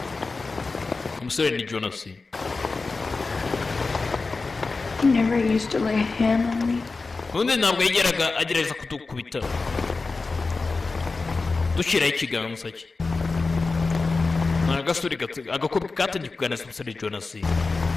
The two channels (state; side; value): quieter; right; 3.9 dB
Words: Umusore ni Jonas. He never used to lay a hand on me. Undi ntabwo yigeraga agerageza kudukubita. Dushyiraho ikiganza cye. Agasuri agakobwa katangiye kuganira n'umusore Jonas. He